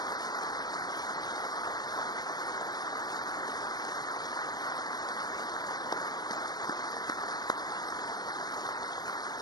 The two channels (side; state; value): right; late; 0.19 ms